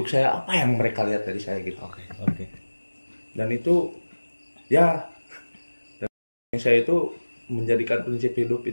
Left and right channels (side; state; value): both; inverted; correlation -1.00